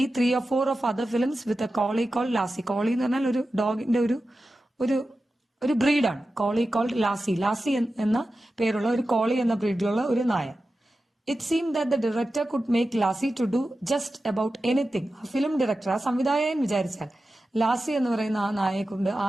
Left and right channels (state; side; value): normal; both; correlation 0.93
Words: 3 or 4 of other films with a collie called Lassie. കോളി എന്ന് പറഞ്ഞാൽ ഒരു ഡോഗിന്റെ ഒരു ബ്രീഡാണ് കോളി കോൾഡ് ലാസി എന്ന പേരുള്ള ഒരു കോളി എന്ന ബ്രീഡിലുള്ള ഒരു നായ. It seem that the director could make Lassie to do just about anything. ആ ഫിലിം ഡയറക്ടർ, ആ സംവിധായകൻ വിചാരിച്ചാൽ ലാസി എന്ന് പറയുന്ന ആ നായയെ കൊണ്ട്,